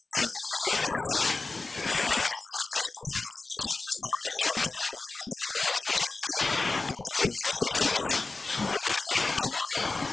a question we asked ourselves, but then we also looked at different building systems. So we looked at timber,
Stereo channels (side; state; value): right; quieter; 3.6 dB